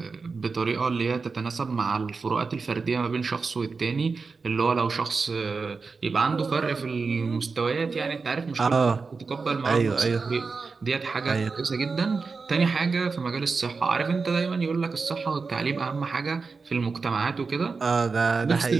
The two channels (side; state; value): left; quieter; 4.6 dB